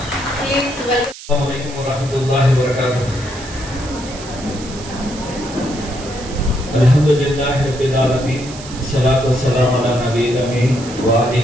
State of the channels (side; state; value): right; noise; hiss, 15 dB below the sound